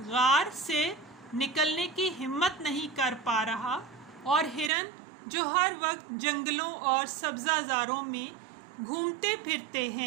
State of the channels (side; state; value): left; drops out; at 4.7 s